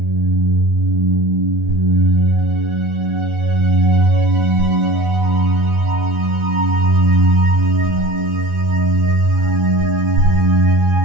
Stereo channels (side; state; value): left; late; 12 ms